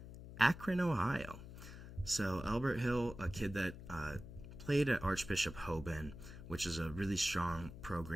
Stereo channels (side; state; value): left; noise; hum, 13 dB below the sound